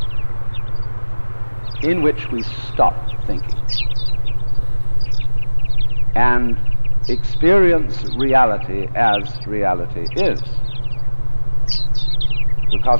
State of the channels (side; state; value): both; inverted; correlation -1.00